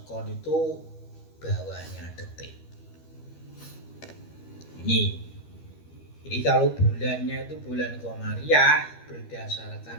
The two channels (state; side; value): late; right; 13 ms